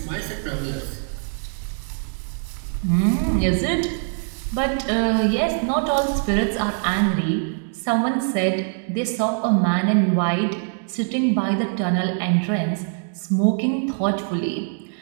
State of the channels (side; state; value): left; silent; 57 dB below the other